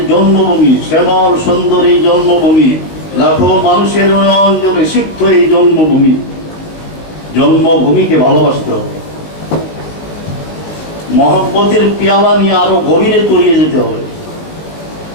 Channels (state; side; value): late; right; 19 ms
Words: জন্মভূমি শ্যামল সুন্দর এই জন্মভূমি লাখো মানুষের অঞ্চলে সিক্ত এই জন্মভূমিকে ভালোবাসতে হবে, মহব্বতের পেয়ালা নিয়ে আরো গভীরে তলিয়ে যেতে হবে।